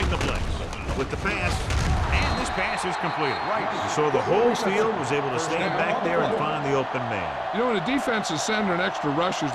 the blitz with the pass, and this pass is completed. So the whole field was able to stand back there and find the open man. You know, when a defense is sending extra rushers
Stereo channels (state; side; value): identical; both; correlation 1.00